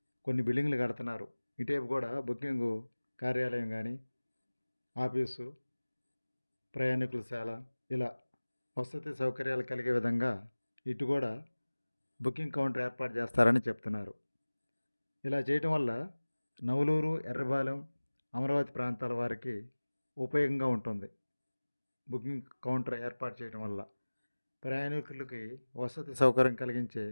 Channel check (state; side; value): inverted; both; correlation -1.00